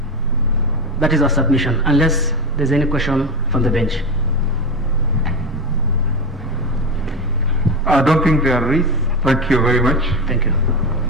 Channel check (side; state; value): both; normal; correlation 0.18